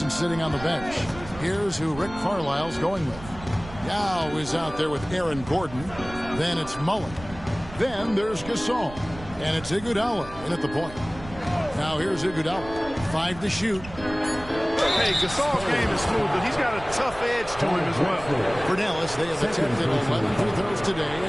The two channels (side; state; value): right; noise; rumble, 15 dB below the sound